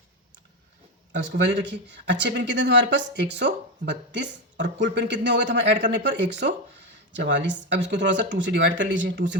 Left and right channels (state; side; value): normal; both; correlation 0.12